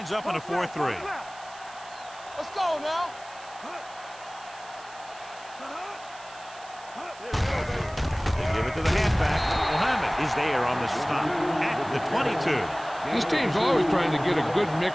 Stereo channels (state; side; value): noise; right; hiss, 20 dB below the sound